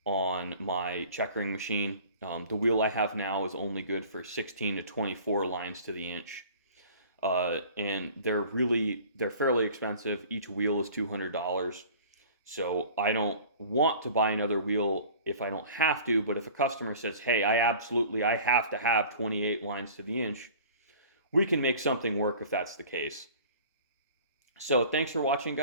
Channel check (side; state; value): both; inverted; correlation -0.45